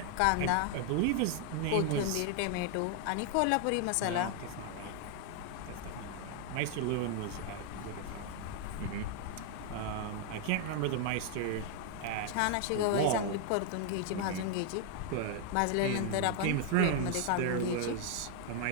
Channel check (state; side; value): different; both; correlation 0.00